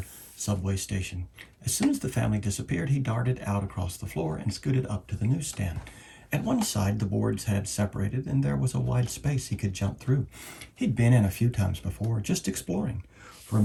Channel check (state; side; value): identical; both; correlation 1.00